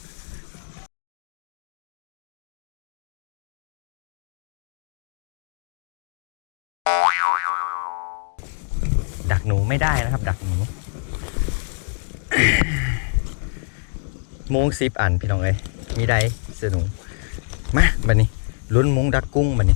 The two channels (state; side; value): silent; right; digital silence